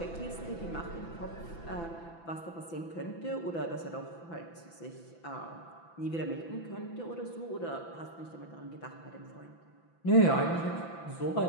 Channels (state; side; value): late; right; 6.0 ms